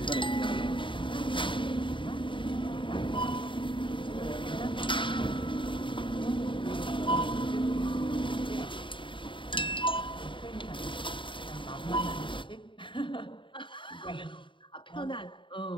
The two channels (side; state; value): right; late; 0.24 ms